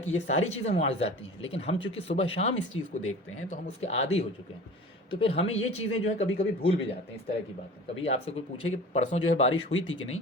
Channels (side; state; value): both; normal; correlation 0.39